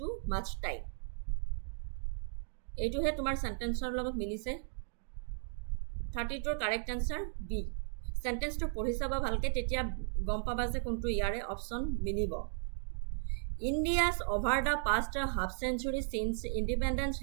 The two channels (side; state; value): left; silent; digital silence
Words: much time এইটোহে তোমাৰ সেন্টেন্সৰ লগত মিলিছে 32 correct answer B সেন্টেন্সটো পঢ়ি চাবা ভালকে তেতিয়া গম পাবা যে কোনটো ইয়াৰে অপশন মিলিব India's over the past half century since independence